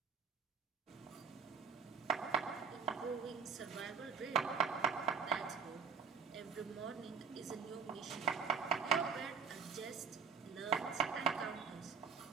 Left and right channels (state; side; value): quieter; left; 5.8 dB